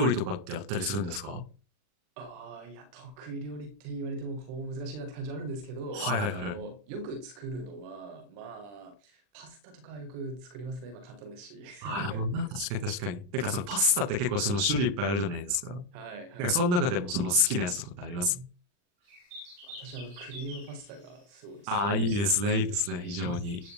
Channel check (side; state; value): left; late; 40 ms